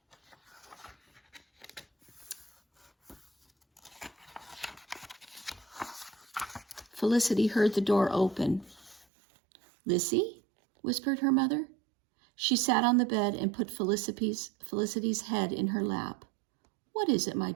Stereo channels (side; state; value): left; drops out; at 9.1 s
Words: Felicity heard the door open. Lissy? Whispered her mother. She sat on the bed and put Felicity's head in her lap. What is it, my